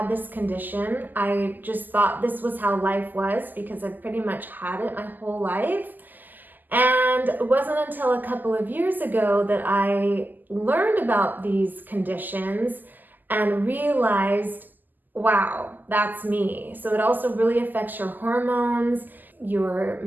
this condition. I just thought this was how life was because I've pretty much had it my whole life. And it wasn't until a couple of years ago that I learned about these conditions and realized, wow, that's me. So it also really affects your hormones, your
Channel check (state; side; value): late; left; 0.086 ms